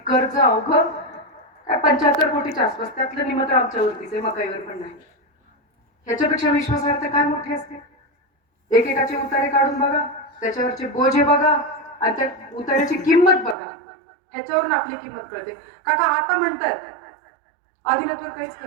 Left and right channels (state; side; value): drops out; left; at 13.6 s